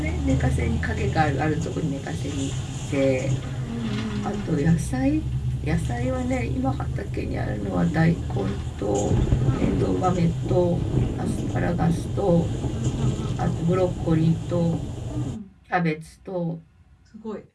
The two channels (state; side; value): identical; both; correlation 1.00